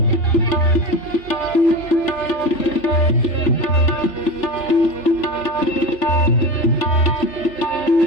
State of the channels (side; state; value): right; late; 3.4 ms